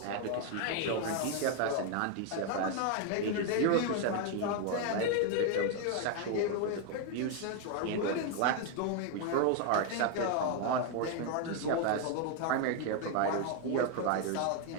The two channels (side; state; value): both; different; correlation 0.01